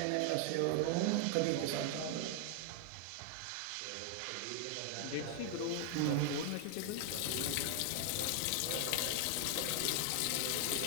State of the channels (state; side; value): different; both; correlation 0.00